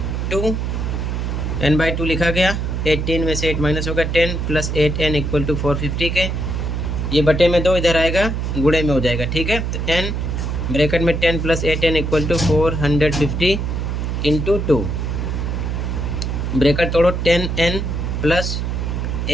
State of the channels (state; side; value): noise; right; hum, 1 dB below the sound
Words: 2 n/2 लिखा गया, 18 में से 8 माइनस होगा 10 प्लस 8n इक्वल टू 450 के। ये बटे में 2 इधर आएगा, गुणे में हो जाएगा, ठीक है। तो n ब्रैकेट में 10 plus 8n equal to 450 into 2, bracket तोड़ो 10n प्लस